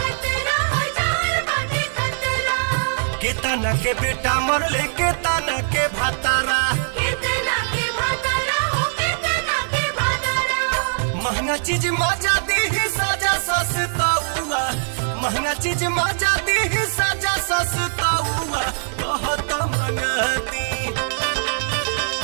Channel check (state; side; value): silent; left; digital silence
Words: केतना के बेटा मरले केतना के भातारा। महंगा चीज मजा दी सजा सस्ता हुआ, महंगा चीज मजा दी सजा सस्ता हुआ। कहत मंगती,